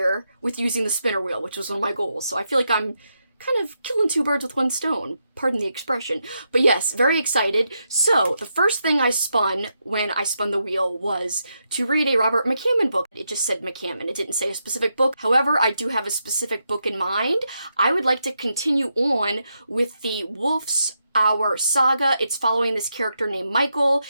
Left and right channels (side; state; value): both; inverted; correlation -0.83